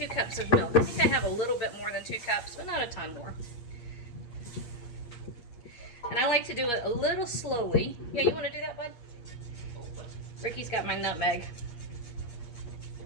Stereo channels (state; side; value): late; right; 8.4 ms